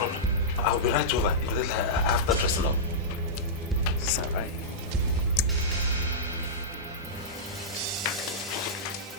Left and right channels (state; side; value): normal; both; correlation -0.15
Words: I'll be right over after dressing up. It's alright.